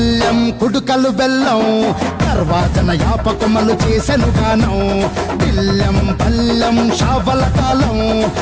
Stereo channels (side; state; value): both; identical; correlation 1.00